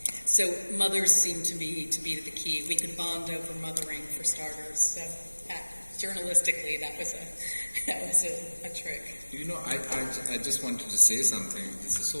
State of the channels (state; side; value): inverted; both; correlation -1.00